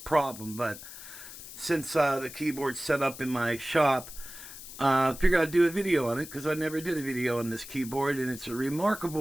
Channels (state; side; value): noise; left; hiss, 13 dB below the sound